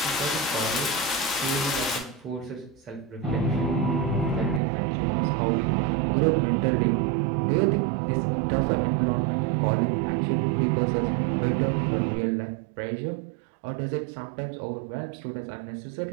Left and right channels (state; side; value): drops out; left; at 4.6 s